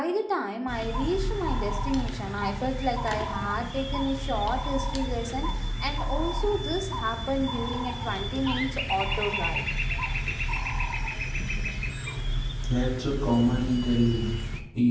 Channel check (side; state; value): both; identical; correlation 1.00